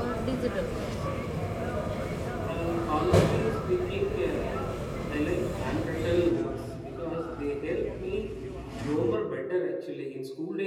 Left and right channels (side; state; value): both; identical; correlation 1.00